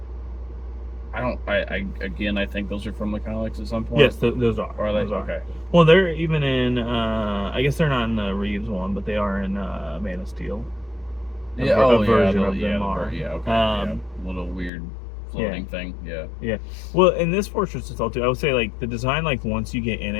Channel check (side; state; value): right; drops out; at 14.7 s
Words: I think those are from the comics at some point. Yes, those are. Are they? Those are. Okay. Well, they're even in. I guess they're not in the Reeves one, but they are in Man of Steel. A version of them are. Yeah. Okay. Little weird floating thing. Yeah. Yeah. Well, in this Fortress of Solitude, I would say like the design, like once you get in